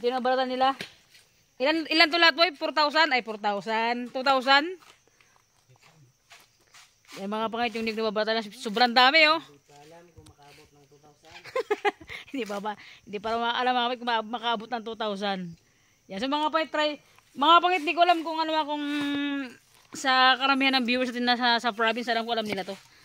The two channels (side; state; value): both; identical; correlation 1.00